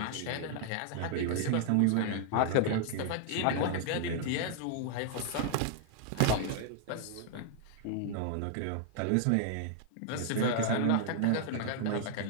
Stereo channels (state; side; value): different; both; correlation -0.01